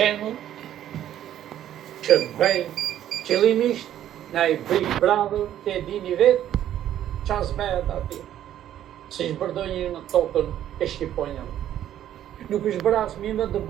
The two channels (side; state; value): left; quieter; 11.5 dB